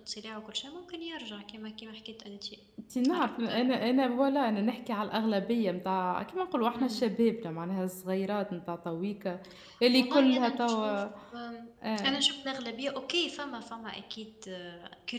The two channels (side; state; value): both; identical; correlation 1.00